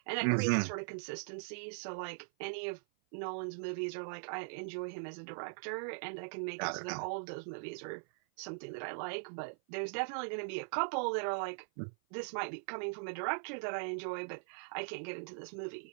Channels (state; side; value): silent; left; 51 dB below the other